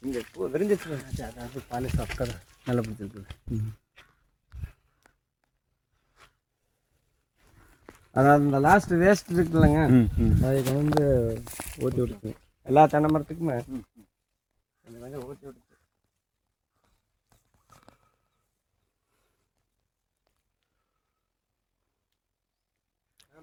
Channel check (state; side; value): identical; both; correlation 1.00